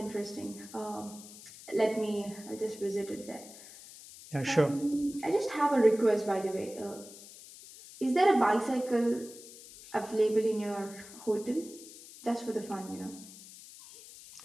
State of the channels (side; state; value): left; noise; hiss, 17 dB below the sound